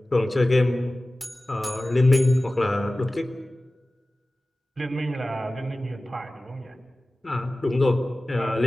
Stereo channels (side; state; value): both; normal; correlation 0.96